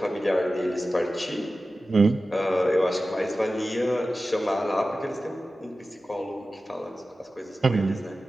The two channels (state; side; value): normal; both; correlation 0.94